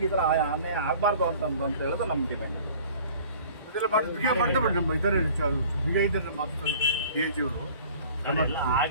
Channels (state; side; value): inverted; both; correlation -0.48